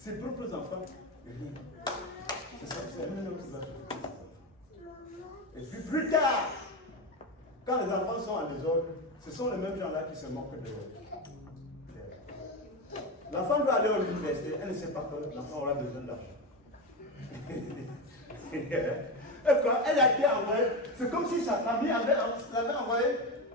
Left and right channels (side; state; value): both; normal; correlation 0.17